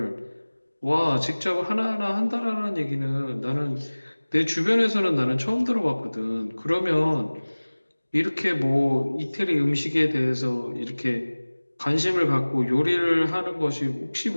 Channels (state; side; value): inverted; both; correlation -1.00